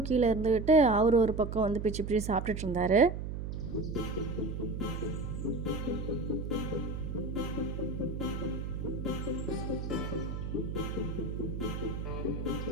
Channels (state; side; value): noise; right; hum, 5 dB below the sound